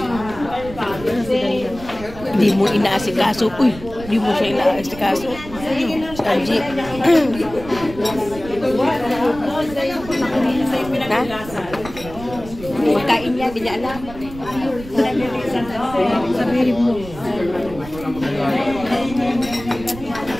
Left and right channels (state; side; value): noise; right; rumble, 14 dB below the sound